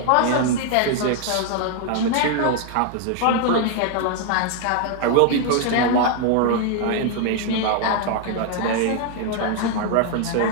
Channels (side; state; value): both; different; correlation 0.00